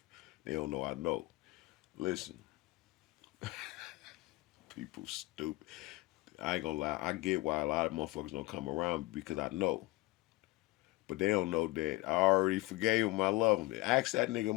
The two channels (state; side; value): quieter; right; 21.0 dB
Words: They don't know I know. Listen, people stupid. I ain't gonna lie. I get why a lot of motherfuckers don't come around because I know. But they don't know that I already forgave him. I love him. Ask that nigga